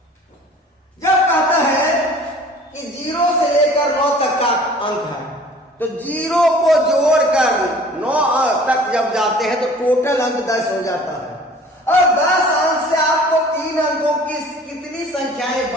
जब कहता है कि 0 से लेकर 9 तक का अंक है, तो 0 को जोड़कर 9 तक जब जाते हैं तो टोटल अंक 10 हो जाता है, और 10 अंक से आपको 3 अंकों की कितनी संख्याएं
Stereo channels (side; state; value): both; normal; correlation 0.48